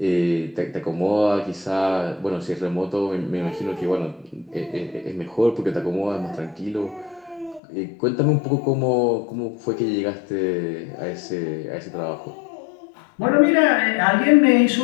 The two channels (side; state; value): right; drops out; at 7.6 s